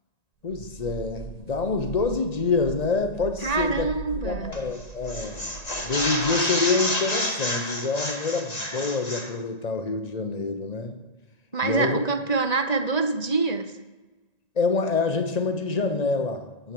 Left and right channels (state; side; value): late; right; 1.9 ms